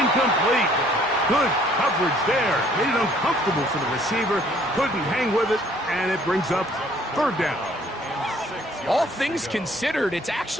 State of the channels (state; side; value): normal; both; correlation 0.60